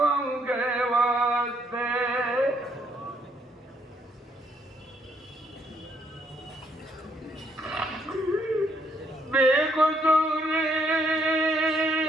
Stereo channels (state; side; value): normal; both; correlation 0.71